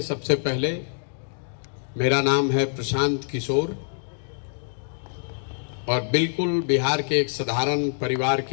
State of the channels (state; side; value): silent; right; digital silence